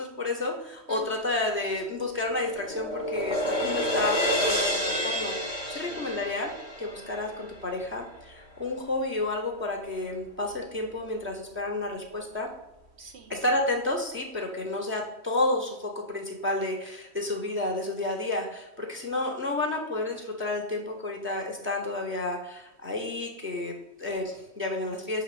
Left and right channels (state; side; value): late; left; 3.1 ms